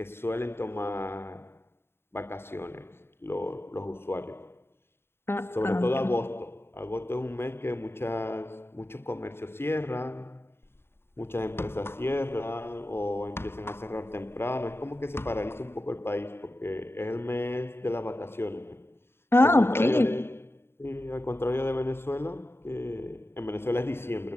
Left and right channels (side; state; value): right; late; 0.11 ms